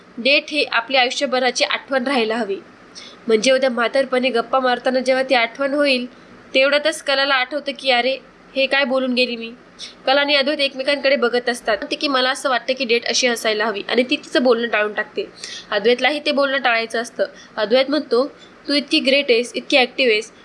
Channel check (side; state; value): both; identical; correlation 1.00